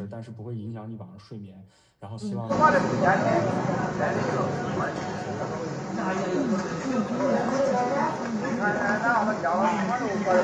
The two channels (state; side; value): identical; both; correlation 1.00